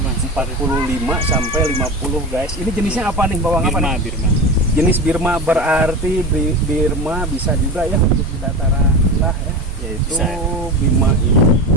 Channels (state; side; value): normal; both; correlation 0.27